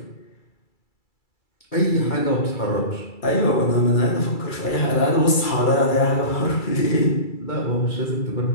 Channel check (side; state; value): right; late; 2.3 ms